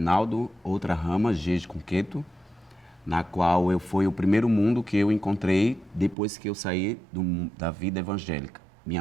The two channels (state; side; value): drops out; left; at 6.2 s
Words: outra rama, Jeje Cunqueto, na qual foi o primeiro mundo que eu encontrei depois que eu saí da vida evangélica. Minha